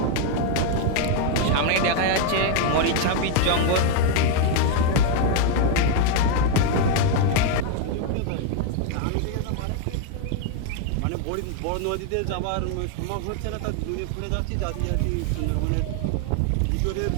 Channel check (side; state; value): both; different; correlation 0.01